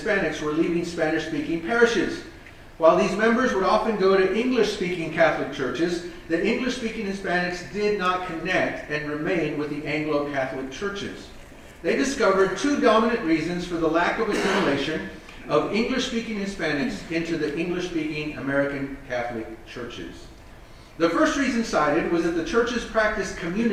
were leaving Spanish-speaking parishes. While these members would often go to English-speaking Catholic churches, the English-speaking Hispanics did not connect and remain with the Anglo-Catholic churches. They discovered two dominant reasons for the lack of assimilation of English-speaking Hispanics into the English-speaking American Catholic churches. The first reason cited was that the churches practiced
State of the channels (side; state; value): both; identical; correlation 1.00